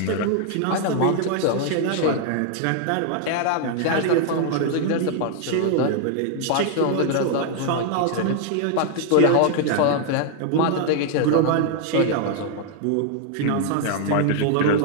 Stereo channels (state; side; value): different; both; correlation 0.00